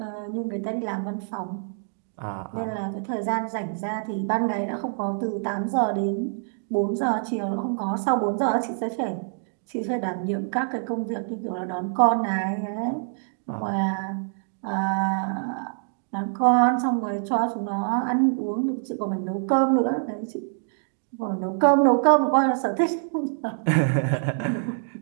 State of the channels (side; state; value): left; silent; digital silence